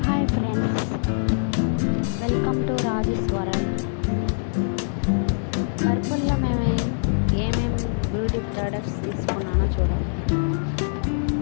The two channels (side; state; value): right; silent; 63 dB below the other